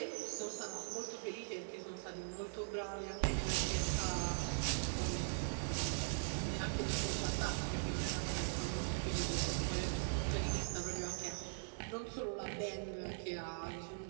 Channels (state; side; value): silent; left; digital silence